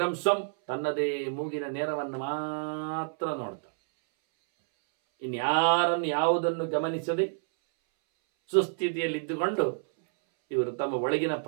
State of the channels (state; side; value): silent; left; 59 dB below the other